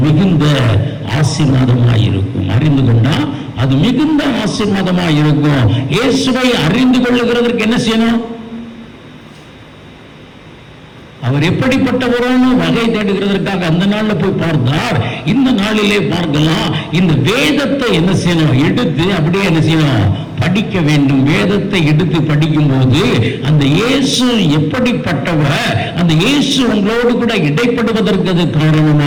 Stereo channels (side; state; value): both; identical; correlation 1.00